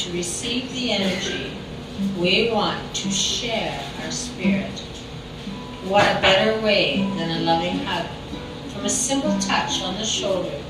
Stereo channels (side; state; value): both; identical; correlation 1.00